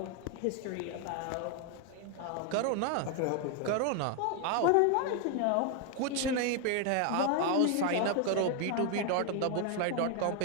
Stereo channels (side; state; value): both; different; correlation 0.01